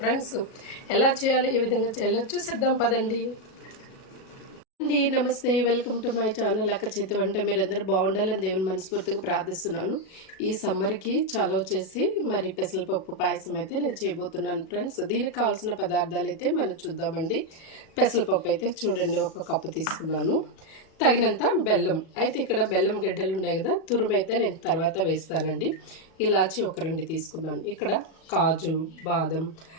ఫ్రెండ్స్, ఎలా చేయాలో ఏ విధంగా చేయాలో చూసేద్దాం పదండి. అండి నమస్తే, వెల్కమ్ టు మై ఛానల్ అక్క చేతి వంట. మీరందరూ బాగుండాలని దేవుని మనస్ఫూర్తిగా ప్రార్థిస్తున్నాను. ఈ సమ్మర్కి చలవ చేసి మరి పెసరపప్పు పాయసం అయితే నేను చేయబోతున్నాను ఫ్రెండ్స్. దీనికి కావాల్సిన పదార్థాలు అయితే మనం చూద్దామండి. పెసరపప్పు అయితే చూడండి, 1 కప్పు తీసుకున్నాను. తగినంత బెల్లం అయితే, ఇక్కడ బెల్లం గడ్డలు ఉన్నాయి కదా, తురుము అయితే నేను తర్వాత వేస్తానండి. ఇలాచి 2 తీసుకున్నాను. ఇక్కడ కాజు, బాదం,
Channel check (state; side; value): late; right; 37 ms